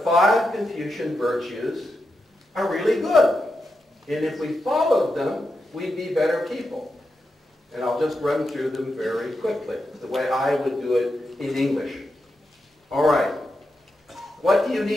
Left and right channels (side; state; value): both; normal; correlation 0.87